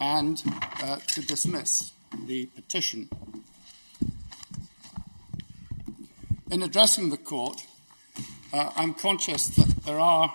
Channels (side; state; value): both; inverted; correlation -1.00